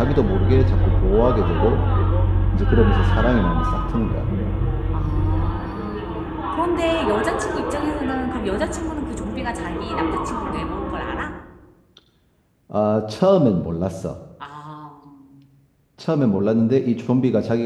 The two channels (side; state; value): both; identical; correlation 1.00